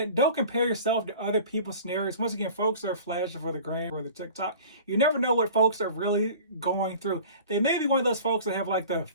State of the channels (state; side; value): inverted; both; correlation -0.42